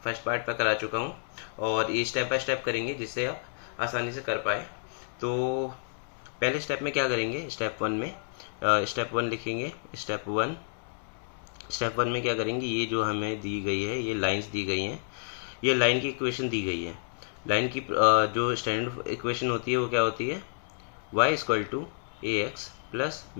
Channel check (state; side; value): silent; right; 58 dB below the other